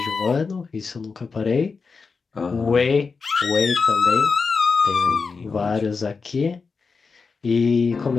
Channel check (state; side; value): quieter; right; 4.8 dB